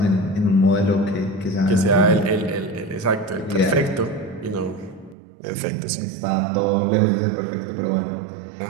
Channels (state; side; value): drops out; left; at 5.2 s